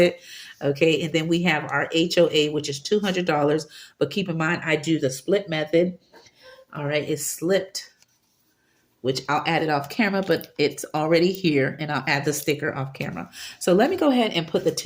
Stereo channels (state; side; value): identical; both; correlation 1.00